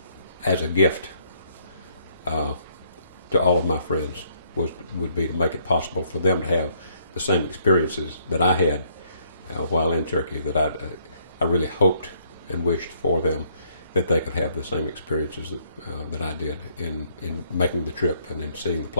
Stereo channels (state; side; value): inverted; both; correlation -0.68